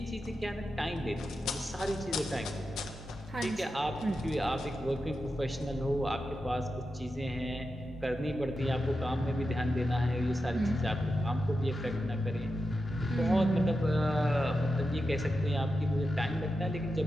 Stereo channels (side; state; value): both; normal; correlation 0.89